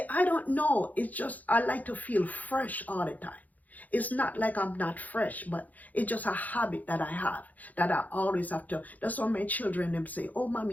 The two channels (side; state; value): right; late; 0.079 ms